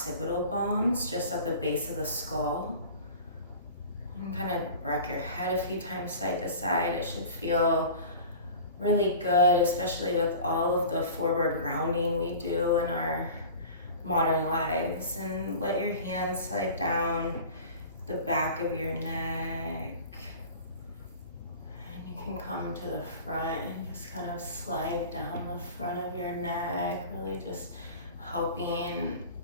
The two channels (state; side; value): inverted; both; correlation -0.40